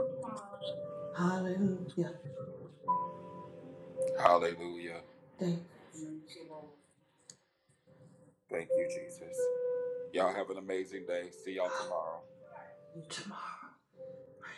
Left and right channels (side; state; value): both; identical; correlation 1.00